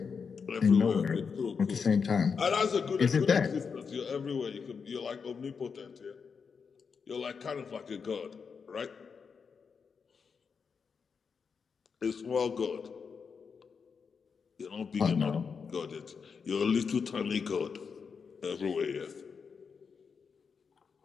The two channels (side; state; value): right; quieter; 5.8 dB